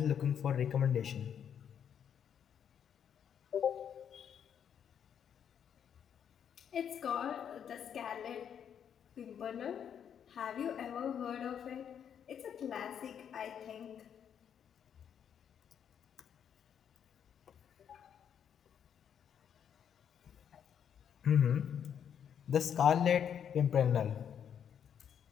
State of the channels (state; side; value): quieter; right; 8.4 dB